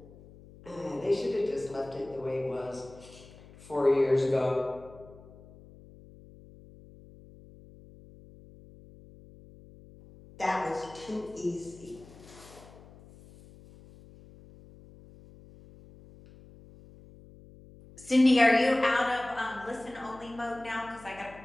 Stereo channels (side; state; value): left; noise; hum, 21 dB below the sound